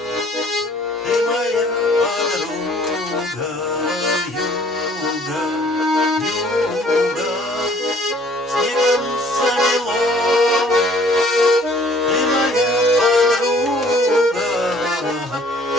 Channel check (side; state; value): both; normal; correlation 0.57